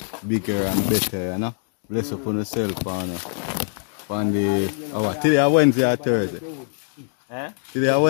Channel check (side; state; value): right; silent; digital silence